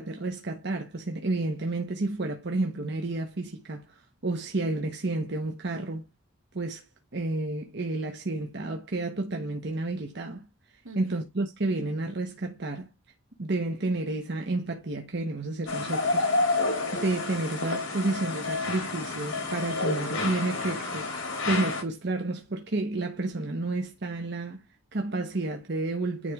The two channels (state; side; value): normal; both; correlation 0.31